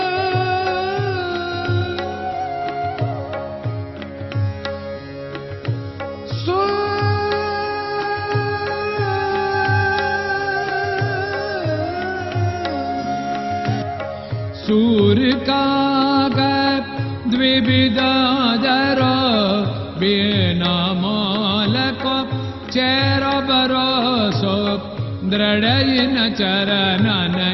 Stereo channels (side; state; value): both; identical; correlation 1.00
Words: काग द्विविदादर बिना मालको चेरो भरोसो दृढ़ चरणन